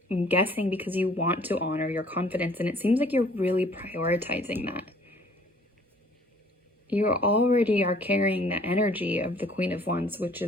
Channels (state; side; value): normal; both; correlation 0.56